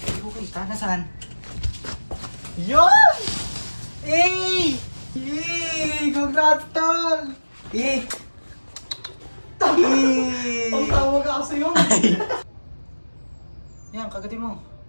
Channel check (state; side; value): inverted; both; correlation -1.00